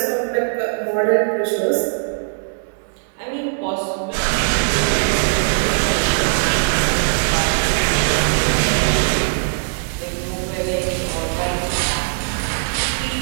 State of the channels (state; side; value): silent; left; digital silence